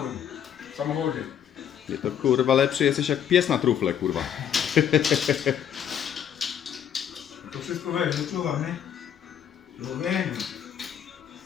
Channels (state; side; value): quieter; right; 9.1 dB